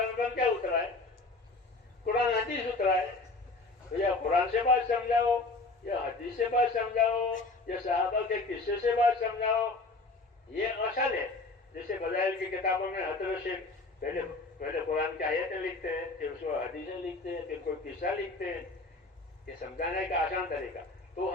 پر کیا اترا ہے؟ قرآن حدیث اترا ہے. تو یا قرآن سے بات سمجھاؤ، یا حدیث سے بات سمجھاؤ، یا صحابہ کے قصے سے بات سمجھاؤ. یہ اصل ہے. جیسے فضائل کی کتابوں میں حضرت سے پہلے قرآن کی آیتیں لکھتے ہیں، پھر اس کو حدیثیں لکھتے ہیں، پھر کوئی قصہ لکھتے ہیں. یہ سمجھانے کا آسان طریقہ. تو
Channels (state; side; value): quieter; right; 3.4 dB